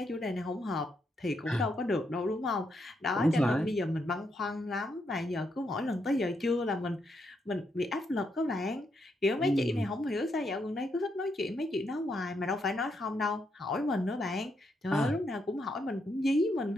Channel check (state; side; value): normal; both; correlation 0.79